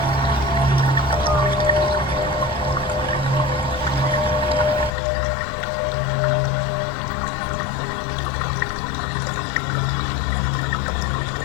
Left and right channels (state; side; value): drops out; right; at 4.9 s